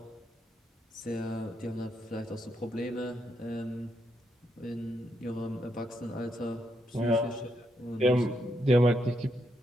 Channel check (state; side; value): normal; both; correlation 0.79